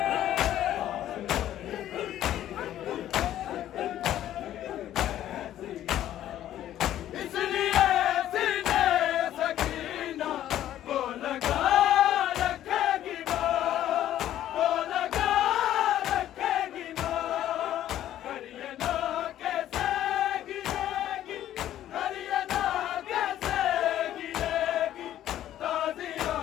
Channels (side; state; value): right; quieter; 12.2 dB